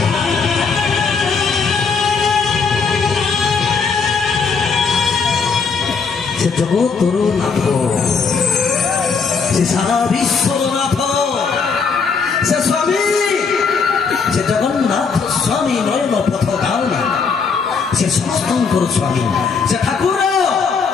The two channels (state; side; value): quieter; right; 5.3 dB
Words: से जगतर नाथ से सारा विश्वर नाथ से स्वामी से जगन्नाथ स्वामी नयन पथ धावनी से समस्तंकर स्वामी से ठाकुर